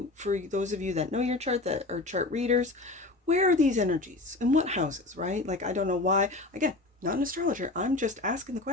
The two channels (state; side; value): quieter; right; 3.0 dB